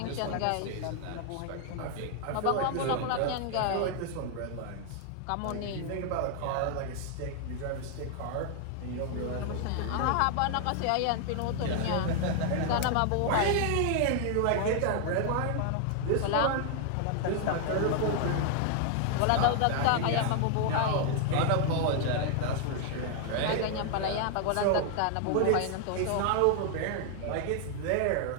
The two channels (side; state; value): both; different; correlation 0.00